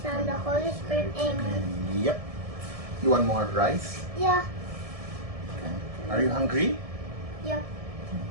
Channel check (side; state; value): left; late; 1.7 ms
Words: Son, the Holy Spirit. Amen. Yep. You want more rice? Yeah. Okay. Are you hungry? Yeah.